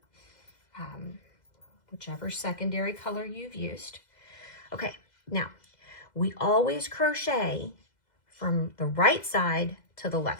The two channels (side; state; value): right; late; 2.0 ms